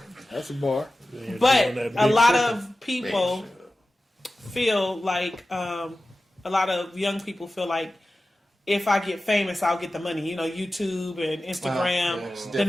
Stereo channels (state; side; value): normal; both; correlation 0.95